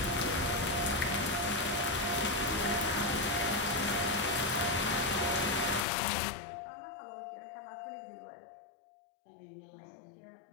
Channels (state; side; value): drops out; right; at 5.9 s